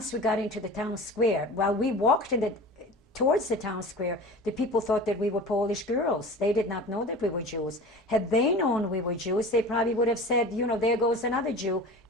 we got into the town square, while we walked towards the town square, the people thought that we were Polish girls. They did not know that we were Jews. Had they known we were Jews, they probably would have said, there goes another Jew,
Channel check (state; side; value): normal; both; correlation 0.37